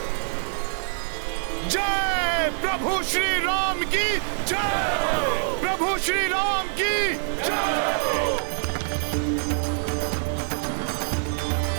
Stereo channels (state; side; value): silent; left; 62 dB below the other